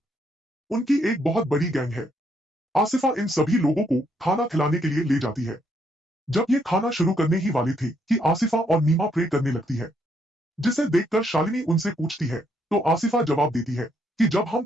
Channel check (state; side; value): normal; both; correlation 0.73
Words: उनकी एक बहुत बड़ी गैंग है। आसिफा इन सभी लोगों को खाना खिलाने के लिए ले जाती है। जब ये खाना शुरू करने ही वाली थी कि आसिफा और नीमा प्रे करने लगती है, जिसे देखकर शालिनी उनसे पूछती है तो आसिफा जवाब देती है कि जब हम